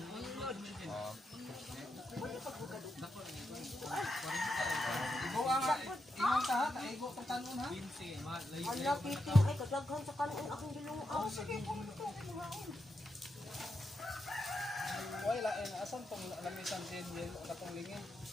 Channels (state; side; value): normal; both; correlation 0.85